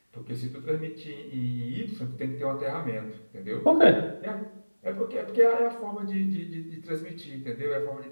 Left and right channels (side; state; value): both; inverted; correlation -1.00